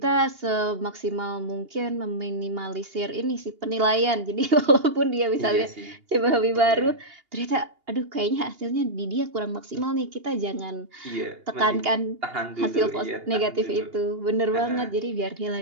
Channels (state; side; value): late; left; 2.8 ms